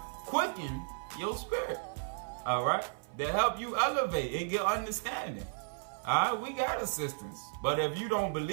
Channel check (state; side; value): silent; left; 55 dB below the other